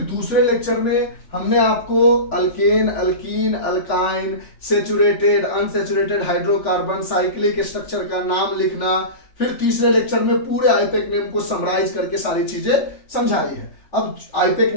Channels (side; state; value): right; late; 3.4 ms